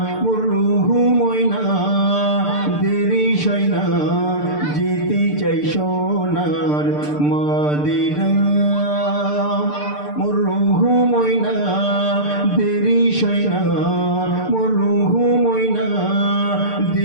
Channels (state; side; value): late; right; 6.7 ms